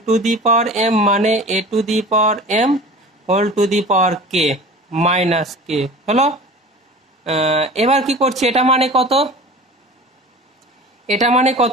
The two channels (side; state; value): both; normal; correlation 0.39